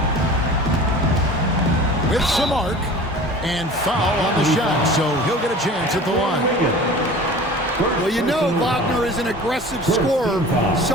With some arc and foul on the shot, so he'll get a chance at the line. Well, you know Wagner is an aggressive scorer,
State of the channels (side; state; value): both; normal; correlation 0.40